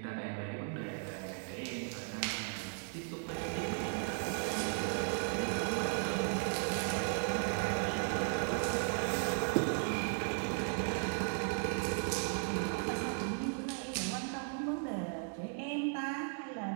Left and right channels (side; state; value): left; silent; 54 dB below the other